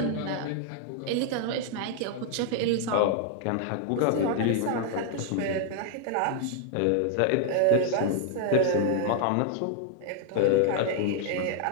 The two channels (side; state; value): both; different; correlation 0.00